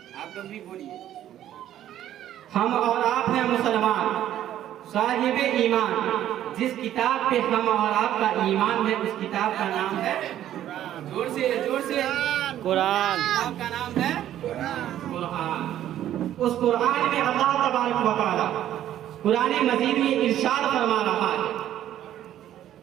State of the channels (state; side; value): quieter; left; 11.9 dB